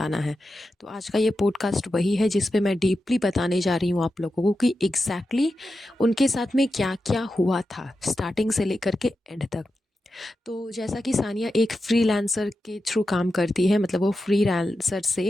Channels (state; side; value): normal; both; correlation 0.90